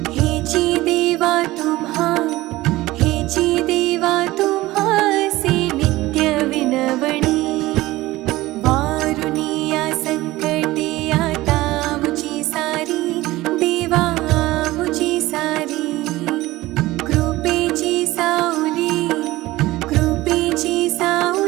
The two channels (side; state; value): left; quieter; 18.1 dB